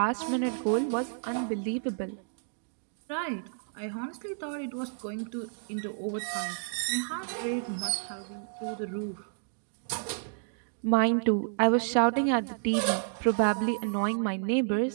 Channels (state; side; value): silent; left; digital silence